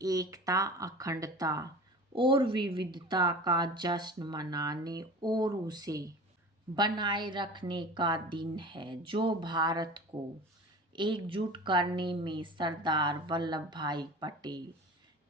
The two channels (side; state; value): both; normal; correlation 0.37